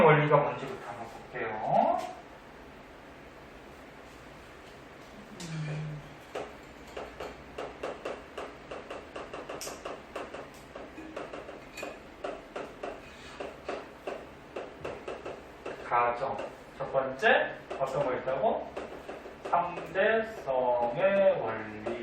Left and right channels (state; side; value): identical; both; correlation 1.00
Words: 원리가 뭔지부터 한번 볼게요. 가정. 첫 번째, 어떤 거 있다고? 상대성의